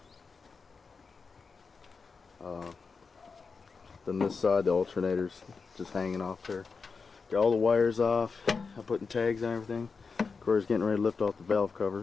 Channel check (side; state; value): right; quieter; 4.9 dB